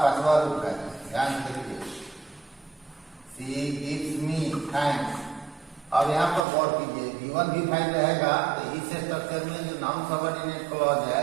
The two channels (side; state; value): left; drops out; at 6.5 s